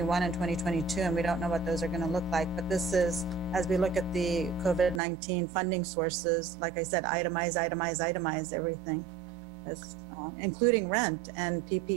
and 2022, and we don't know what those are going to look like. But this is, as we look at the COVID-19 funding sources, like I said, itemize everything, including rent and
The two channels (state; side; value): drops out; left; at 5.0 s